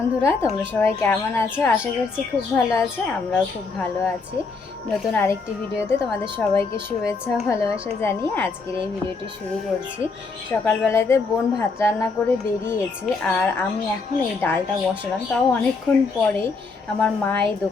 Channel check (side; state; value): right; quieter; 4.3 dB